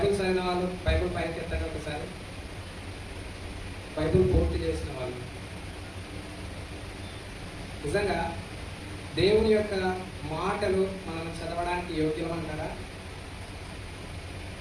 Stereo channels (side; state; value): both; identical; correlation 1.00